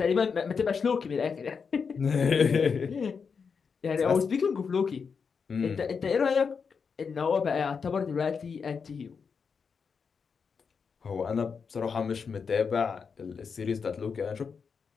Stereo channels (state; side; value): quieter; right; 5.8 dB